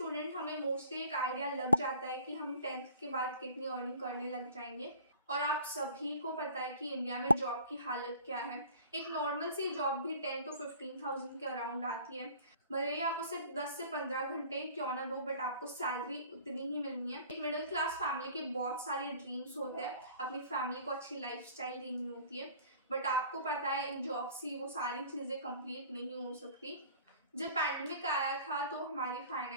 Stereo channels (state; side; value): inverted; both; correlation -0.49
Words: हमें मोस्टली एक आइडिया लग जाता है कि हम 10th के बाद कितनी अर्निंग करने लग जाएंगे, और आप सभी को पता है कि इंडिया में जॉब की हालत क्या है। एक नॉर्मल सी जॉब भी 10 to 15,000 के अराउंड आती है, भले ही आप उसे 10 से 15 घंटे क्यों ना दो, बट आपको सैलरी उतनी ही मिलनी है। एक मिडिल क्लास फैमिली के बहुत सारे ड्रीम्स होते हैं, अपनी फैमिली को अच्छी लाइफस्टाइल देनी होती है, बट आपको पता है इन जॉब से वो सारी चीज़ें कंप्लीट नहीं हो सकती। जब पैंडमिक आया था तो हमारी